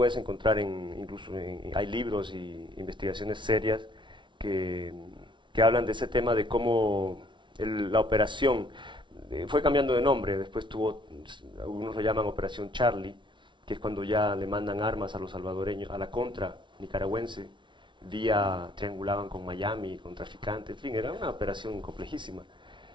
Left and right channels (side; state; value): left; late; 0.24 ms